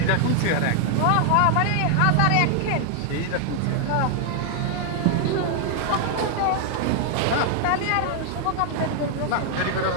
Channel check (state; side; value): different; both; correlation 0.00